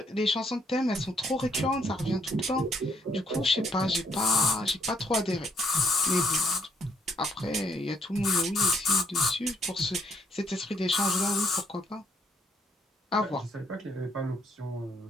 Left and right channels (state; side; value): normal; both; correlation 0.69